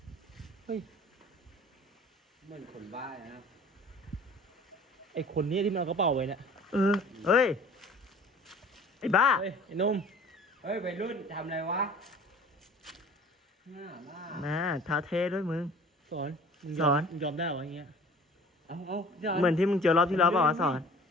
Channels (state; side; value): normal; both; correlation 0.47